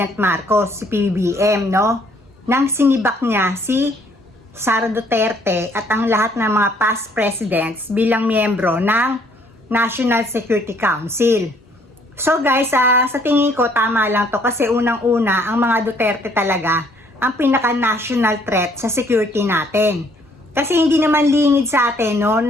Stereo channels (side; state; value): both; normal; correlation 0.63